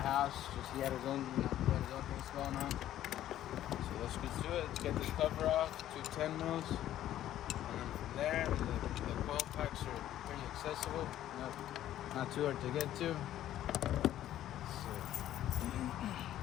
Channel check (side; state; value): right; quieter; 12.5 dB